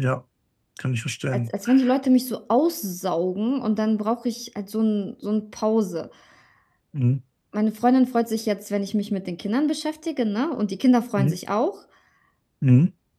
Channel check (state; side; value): identical; both; correlation 1.00